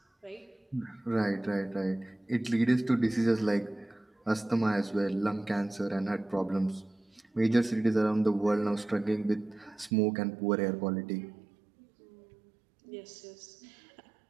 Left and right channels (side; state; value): left; drops out; at 9.9 s